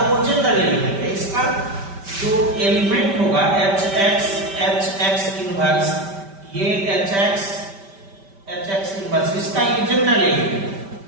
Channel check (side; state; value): left; late; 5.1 ms